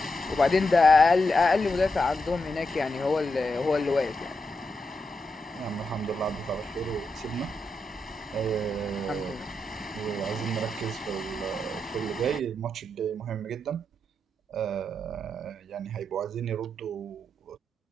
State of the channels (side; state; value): both; normal; correlation 0.85